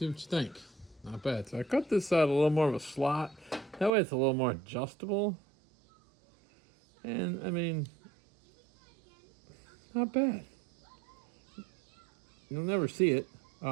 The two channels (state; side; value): drops out; left; at 3.9 s